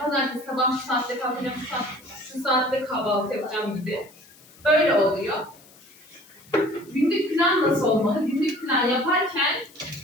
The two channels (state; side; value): noise; left; hiss, 25 dB below the sound